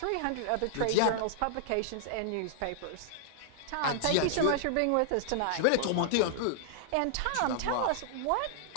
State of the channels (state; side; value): different; both; correlation -0.01